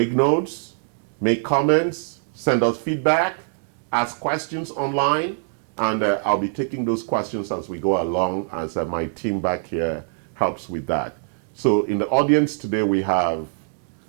notes, make comments, send us feedback, ask questions online, and I'll be taking those questions as we go along, as my team back here helps with that. So in the audience today, we have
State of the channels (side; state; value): left; silent; digital silence